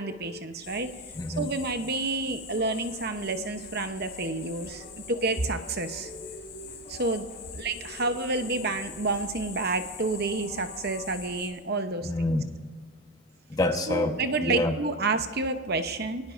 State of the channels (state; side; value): normal; both; correlation 0.14